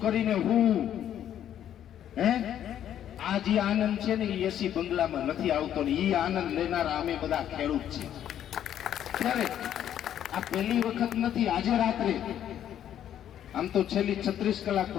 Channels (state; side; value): quieter; right; 10.5 dB